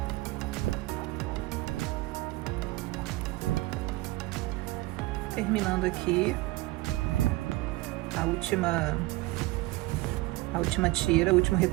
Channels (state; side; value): quieter; left; 19.6 dB